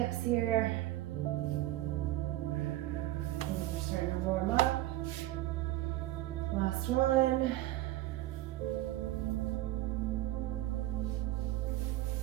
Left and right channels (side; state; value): left; quieter; 15.8 dB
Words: here. Starting to warm up. Last one.